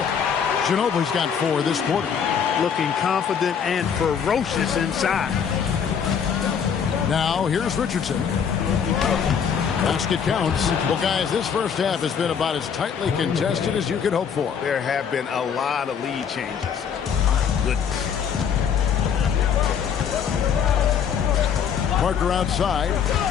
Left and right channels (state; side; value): quieter; right; 7.4 dB